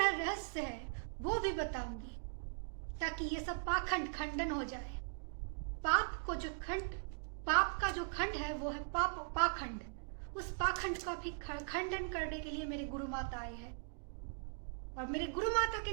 रहस्य है वो भी बताऊंगी, ताकि ये सब पाखंड खंडन हो जाए। पाप का जो खंड है वो है पाखंड। उस पाखंड का भी खंडन करने के लिए मेरे गुरु माता आए हैं, और मेरे गुरु माता के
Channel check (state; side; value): silent; left; digital silence